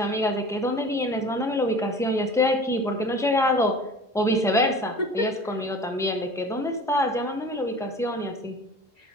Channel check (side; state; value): both; normal; correlation 0.41